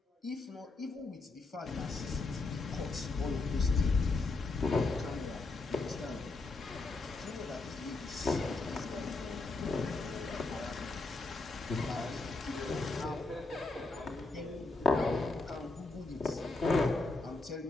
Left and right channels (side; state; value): right; quieter; 3.4 dB